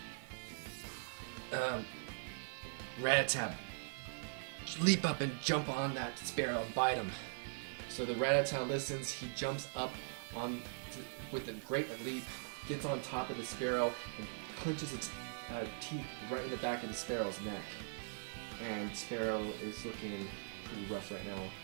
Rattata, leap up and jump on that Sparrow and bite him. So the Rattata listens. He jumps up with a great leap, gets on top of the Sparrow, and clenches its teeth right in the back of the Sparrow's neck. And Sparrow is looking pretty rough right now.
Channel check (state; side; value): silent; left; digital silence